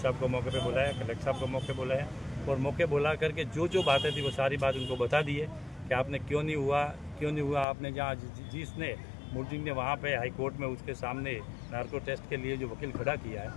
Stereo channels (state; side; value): drops out; right; at 7.7 s